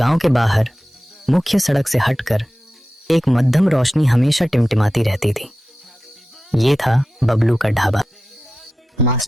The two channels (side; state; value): both; normal; correlation 0.93